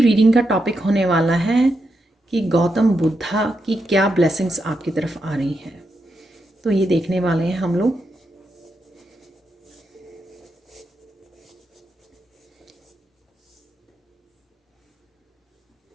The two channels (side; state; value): both; normal; correlation 0.84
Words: का टॉपिक होने वाला है कि गौतम बुद्धा की क्या ब्लेसिंग्स आपकी तरफ आ रही हैं। तो ये देखने वाले हैं हम लोग।